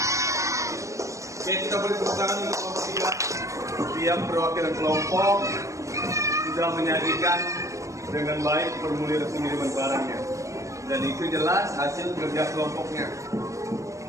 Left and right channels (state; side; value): late; left; 0.15 ms